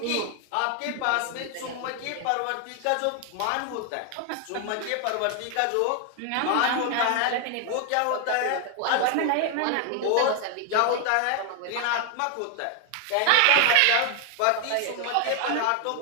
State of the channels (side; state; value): both; different; correlation 0.01